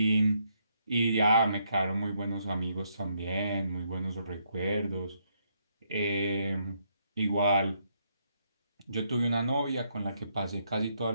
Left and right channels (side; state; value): both; inverted; correlation -0.75